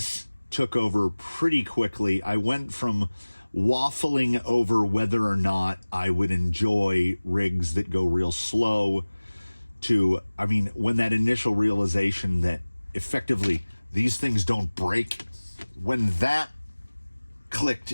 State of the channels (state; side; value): inverted; both; correlation -1.00